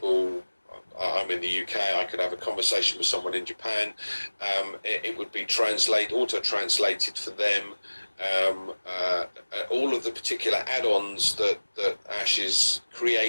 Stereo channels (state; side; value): inverted; both; correlation -1.00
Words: I'm in the UK. I could have a conversation with someone in Japan. It would be auto-translated for them. All of the particular add-ons that Ash has